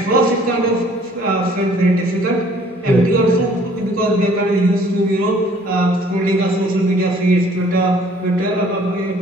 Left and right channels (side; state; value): both; normal; correlation 0.57